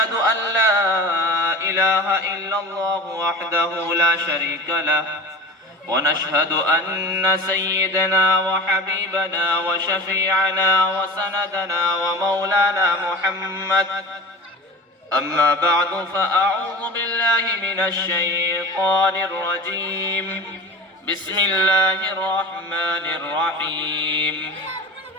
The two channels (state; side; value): normal; both; correlation 0.33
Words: أن لا إله إلا الله وحده لا شريك له ونشهد أن سيدنا وحبيبنا وشفيعنا وسندنا ومولانا محمد. أما بعد فأعوذ بالله من الشيطان الرجيم. بسم الله الرحمن الرحيم.